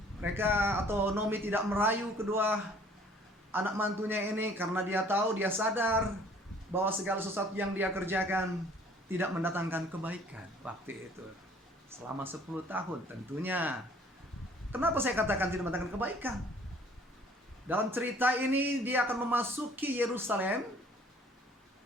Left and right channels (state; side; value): normal; both; correlation 0.55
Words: Mereka atau Nomi tidak merayu kedua anak mantunya ini karena dia tahu, dia sadar bahwa segala sesuatu yang dia kerjakan tidak mendatangkan kebaikan waktu itu. Selama 10 tahun tentunya. Kenapa saya katakan tidak mendatangkan kebaikan? Dalam cerita ini dia akan memasuki Yerusalem,